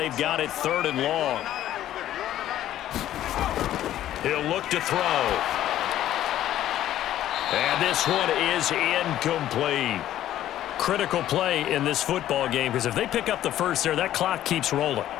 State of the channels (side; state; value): right; quieter; 12.6 dB